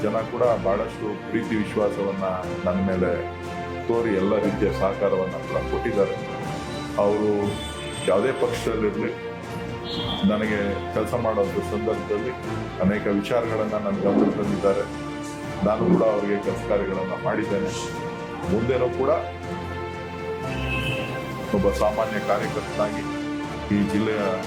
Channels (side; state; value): both; identical; correlation 1.00